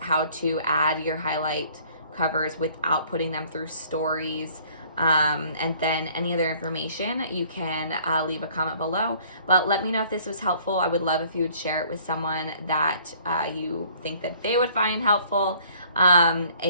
how to add your highlight covers without putting them through stories. And then any other information, you can leave a comment below. But let me know if this was helpful. I would love if you would share it with someone that you think that they would find helpful. And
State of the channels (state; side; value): inverted; both; correlation -0.57